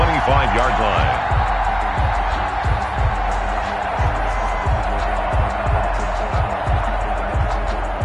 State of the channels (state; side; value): identical; both; correlation 1.00